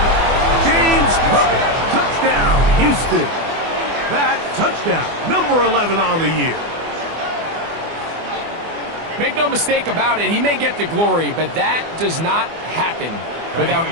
James Cook, touchdown, Houston. That touchdown, number 11 on the year. Make no mistake about it, he may get the glory, but that does not happen without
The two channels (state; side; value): late; left; 24 ms